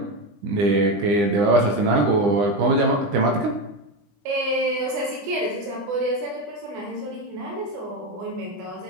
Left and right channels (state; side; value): late; left; 20 ms